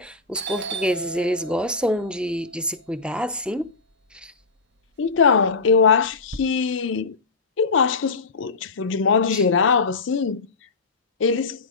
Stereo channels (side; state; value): right; quieter; 4.2 dB